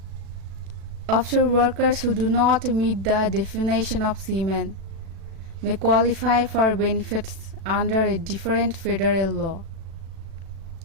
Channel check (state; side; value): late; left; 36 ms